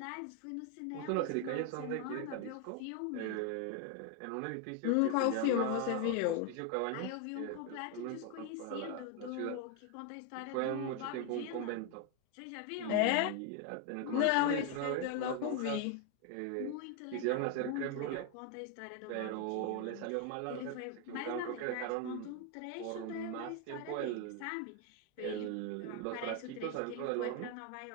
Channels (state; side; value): different; both; correlation 0.01